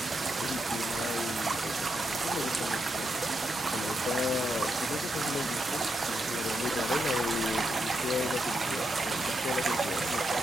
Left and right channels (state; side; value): normal; both; correlation 0.83